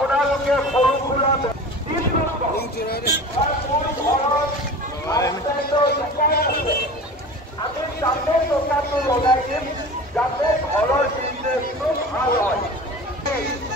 সৰু সুৰা আমি তাতে টকাটো লগাই দিম যাতে ঘৰৰ বিজনেছটো ভাল হয়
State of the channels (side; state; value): both; normal; correlation 0.36